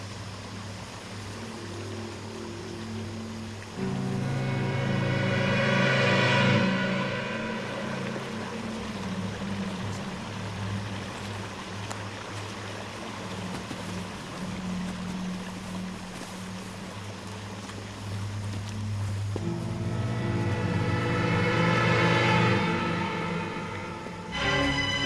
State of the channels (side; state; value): both; identical; correlation 1.00